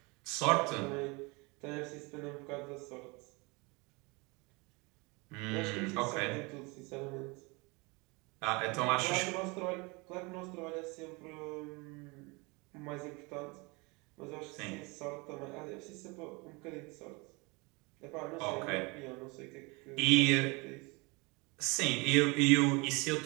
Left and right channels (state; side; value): quieter; left; 27.4 dB